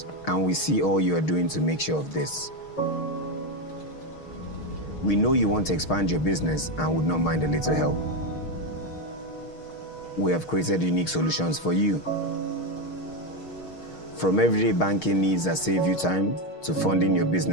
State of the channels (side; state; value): right; late; 6.4 ms